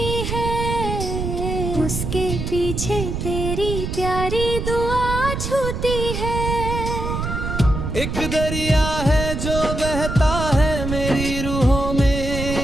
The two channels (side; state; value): right; noise; rumble, 4 dB below the sound